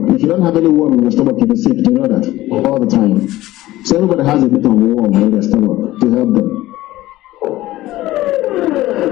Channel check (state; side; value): quieter; right; 16.4 dB